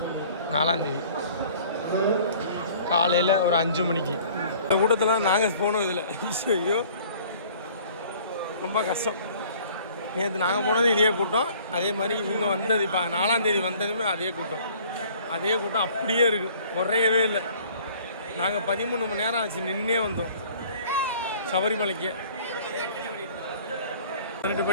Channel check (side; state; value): both; inverted; correlation -0.53